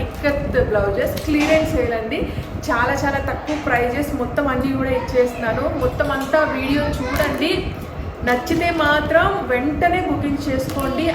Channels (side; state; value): both; identical; correlation 1.00